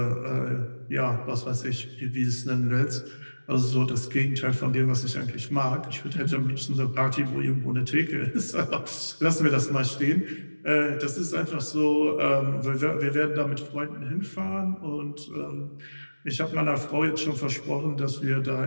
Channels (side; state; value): both; inverted; correlation -1.00